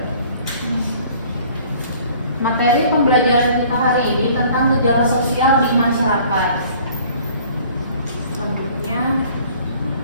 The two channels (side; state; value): both; inverted; correlation -0.53